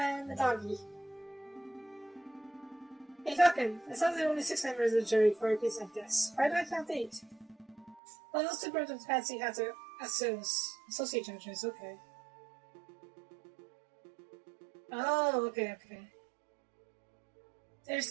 a doggy. Hey Falcon, it sounds like only 6 members of the jury for a case like this. Why do I count 8? Well, those 2 birds with fancy hats are associate judges, okay. Oh, okay. There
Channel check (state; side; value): drops out; left; at 8.0 s